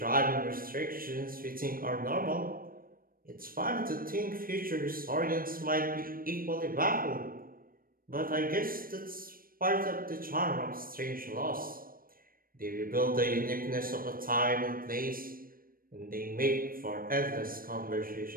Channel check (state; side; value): late; left; 0.41 ms